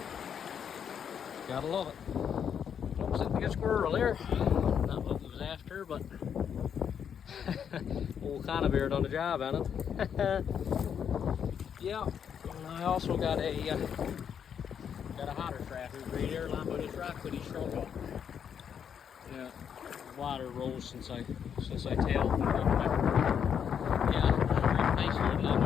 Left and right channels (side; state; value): right; quieter; 7.9 dB